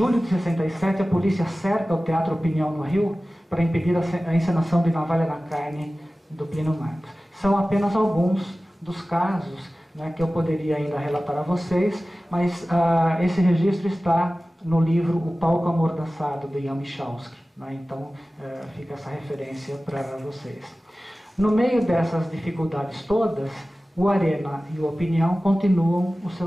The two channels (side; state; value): both; normal; correlation 0.96